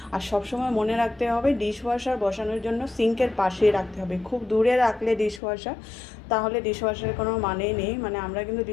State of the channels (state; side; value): drops out; right; at 5.4 s